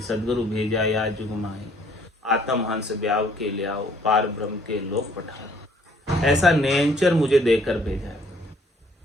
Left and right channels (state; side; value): normal; both; correlation 0.61